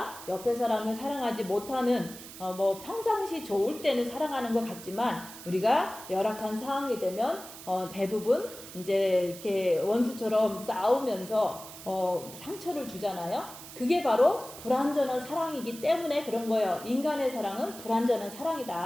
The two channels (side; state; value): right; noise; hiss, 14 dB below the sound